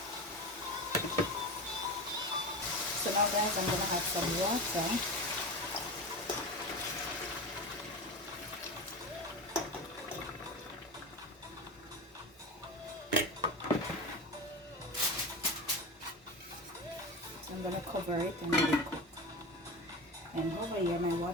So now guys, I'm gonna add some water. I'm gonna cover it and let it cook. And over here my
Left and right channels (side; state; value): both; normal; correlation 0.25